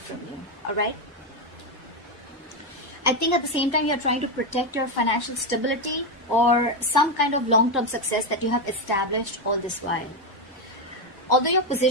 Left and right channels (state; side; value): normal; both; correlation 0.08